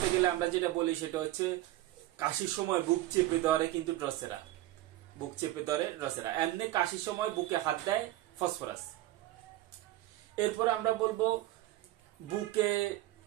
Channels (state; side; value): quieter; left; 15.9 dB